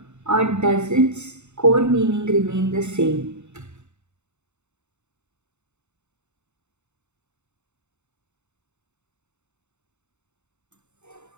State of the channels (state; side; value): late; left; 0.83 ms